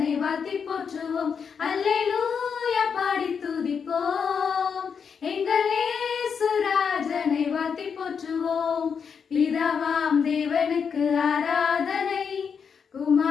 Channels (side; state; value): right; quieter; 6.5 dB